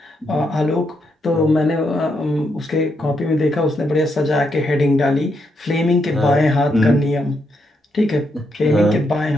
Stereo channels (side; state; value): both; normal; correlation 0.79